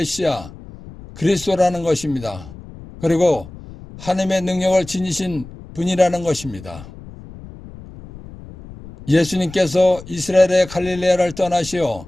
그리스도라는 것입니다. 그리고 하느님의 능력을 지니신 분이라는 것입니다. 예수님께서 이스라엘의 갈릴레아를 떠나시어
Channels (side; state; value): left; noise; rumble, 16 dB below the sound